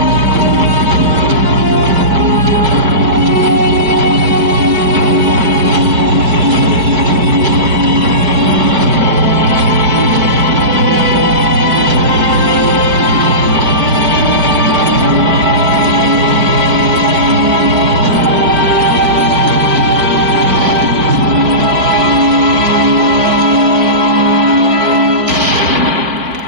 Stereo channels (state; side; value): late; left; 4.7 ms